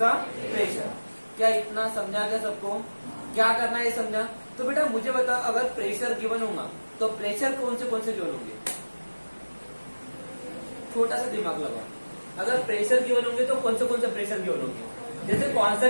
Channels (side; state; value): both; inverted; correlation -1.00